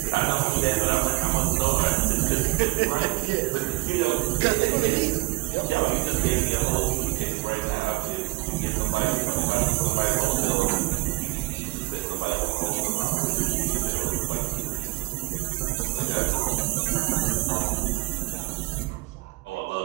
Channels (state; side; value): quieter; left; 22.5 dB